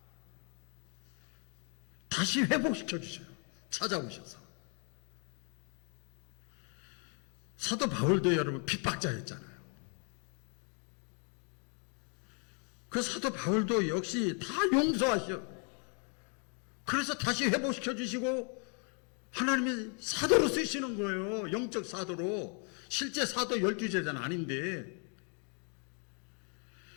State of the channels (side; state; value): right; quieter; 39.7 dB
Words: 다시 회복시켜 주셔요. 찾아오셔서. 사도 바울도 여러분 핍박자였잖아요. 그 사도 바울도 역시 다 용서하셔. 그래서 다시 회복시켜 주시고 하나님이 사도로 쓰시는 거예요. 영적 사도로. 실제 사도 12제자는 아닌데.